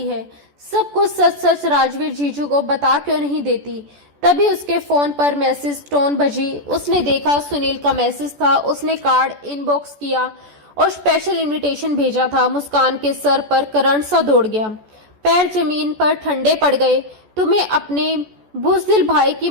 है। सब कुछ सच सच राजवीर जीजू को बता क्यों नहीं देती। तभी उसके फोन पर मैसेज टोन बजी। उसने देखा सुनील का मैसेज था। उसने कार्ड इनबॉक्स किया और स्पेशल इनविटेशन भेजा था। मुस्कान के सर पर करंट सा दौड़ गया, पैर जमीन पर ठंडे पड़ गए। तुम्हें अपने बुज़दिल भाई की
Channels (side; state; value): left; late; 14 ms